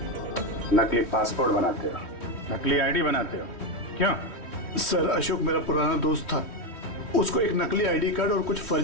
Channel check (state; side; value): late; right; 3.1 ms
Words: नकली पासपोर्ट बनाते हो, नकली आईडी बनाते हो, क्यों? सर अशोक मेरा पुराना दोस्त था, उसको एक नकली आईडी कार्ड और कुछ